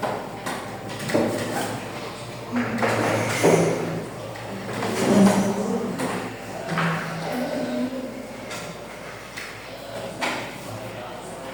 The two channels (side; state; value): left; noise; hum, 24 dB below the sound